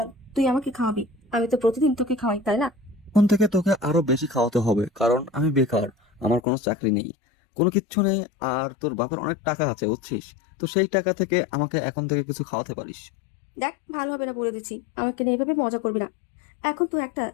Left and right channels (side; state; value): right; drops out; at 6.4 s